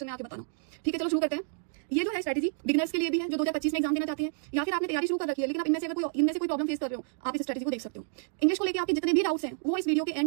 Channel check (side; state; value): left; silent; digital silence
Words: में आके बताना। ठीक है, चलो शुरू करते हैं। ये जो है स्ट्रेटजी बिगिनर्स के लिए भी है जो 2025 में एग्जाम देना चाहते हैं, या फिर आपने तैयारी शुरू कर रखी है लेकिन अब इनमें से कोई प्रॉब्लम फेस कर रहे हो, आप इस स्ट्रेटजी को देख सकते हो। इंग्लिश को लेकर आपके जितने भी डाउट्स हैं वो इस वीडियो के